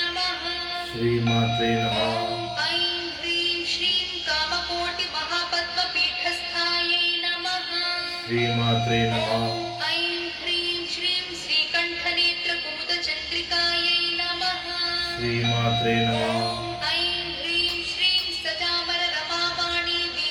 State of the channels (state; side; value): identical; both; correlation 1.00